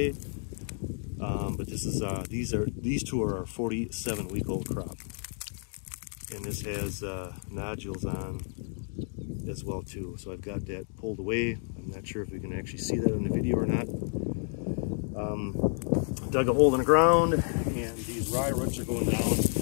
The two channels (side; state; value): right; silent; 56 dB below the other